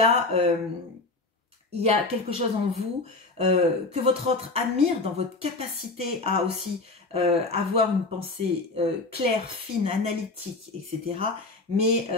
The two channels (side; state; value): right; quieter; 3.3 dB